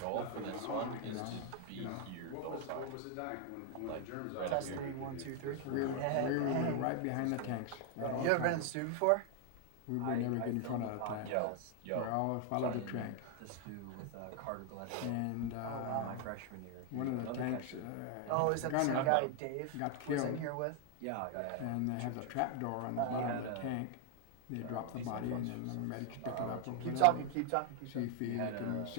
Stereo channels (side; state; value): both; different; correlation 0.00